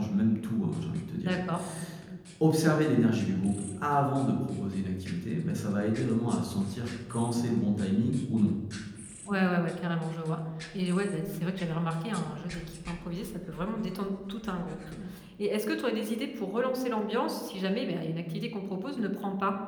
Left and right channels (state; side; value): identical; both; correlation 1.00